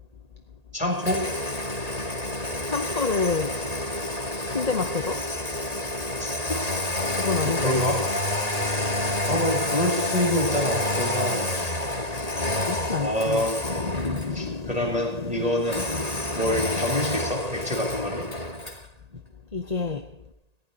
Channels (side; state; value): left; late; 1.8 ms